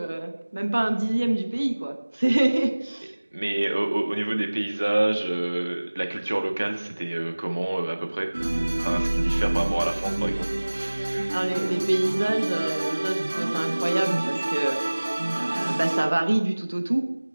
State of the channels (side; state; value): both; inverted; correlation -1.00